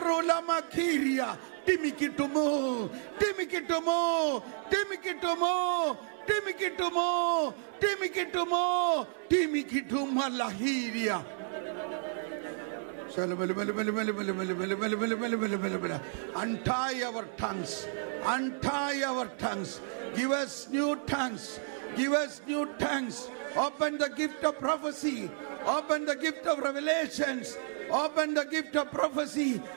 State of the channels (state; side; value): silent; left; 57 dB below the other